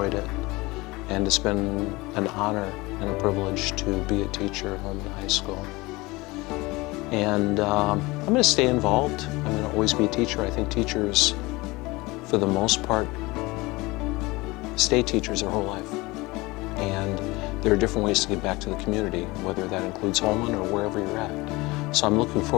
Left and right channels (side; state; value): right; quieter; 22.4 dB